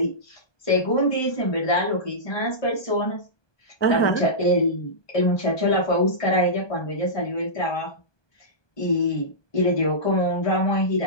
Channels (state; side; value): late; right; 1.2 ms